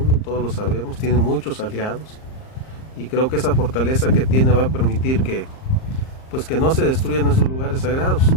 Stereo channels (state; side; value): late; right; 38 ms